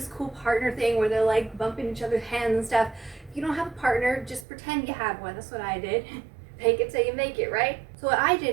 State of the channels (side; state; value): left; drops out; at 4.5 s